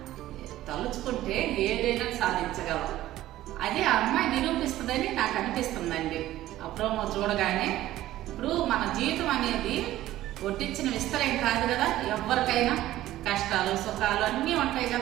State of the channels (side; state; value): left; quieter; 14.7 dB